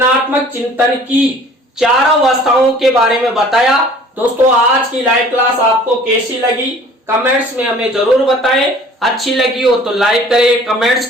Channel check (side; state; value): both; normal; correlation 0.50